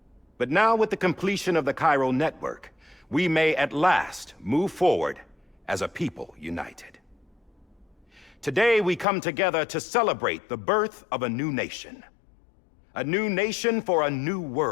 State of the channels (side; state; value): right; drops out; at 9.1 s